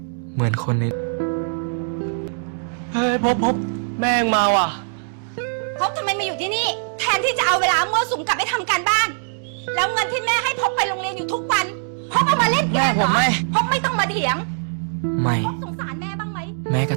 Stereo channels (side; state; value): left; silent; 64 dB below the other